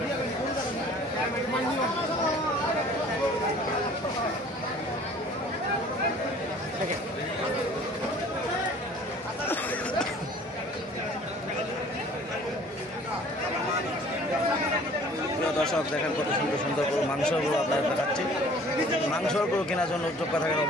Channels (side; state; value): both; normal; correlation 0.51